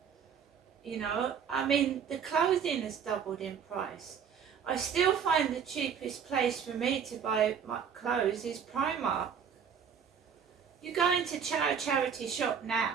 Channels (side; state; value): left; quieter; 7.3 dB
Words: You know, I mean, the clothing has doubled in price. I still find the cheapest place for me to buy my clothes is Primark. You go into a charity shop now,